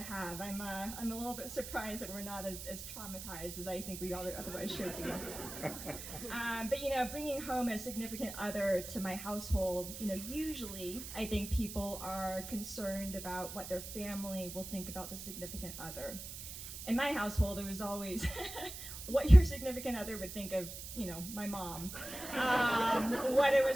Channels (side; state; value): right; noise; hiss, 9 dB below the sound